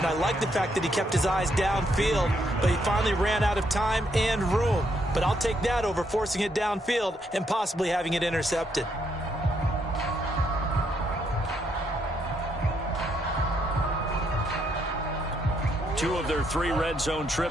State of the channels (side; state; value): both; normal; correlation 0.75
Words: I like the fact that he kept his eyes downfield, but he finally ran out of time and room. But I'll take that over forcing it downfield and possibly having it intercepted. Two of their 3 red zone